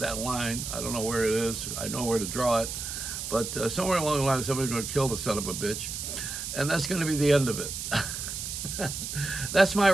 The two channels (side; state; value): right; noise; hiss, 5 dB below the sound